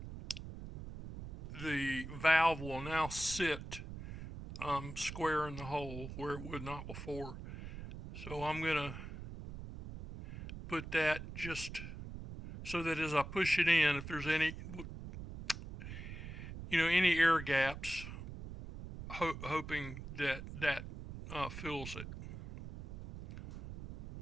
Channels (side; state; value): right; noise; rumble, 10 dB below the sound